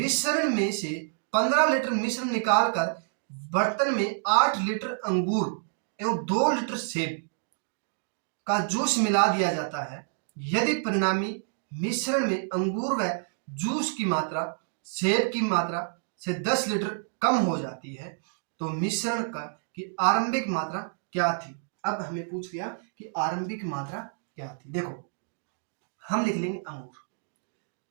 मिश्रण निकालकर बर्तन में 8 लीटर अंगूर एवं 2 लीटर सेब का जूस मिला दिया जाता है। यदि परिणामी मिश्रण में अंगूर व जूस की मात्रा सेब की मात्रा से 10 लीटर कम हो जाती है तो मिश्रण की आरंभिक मात्रा क्या थी। अब हमें पूछ लिया कि आरंभिक मात्रा क्या थी। देखो हम लिख लेंगे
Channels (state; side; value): silent; left; digital silence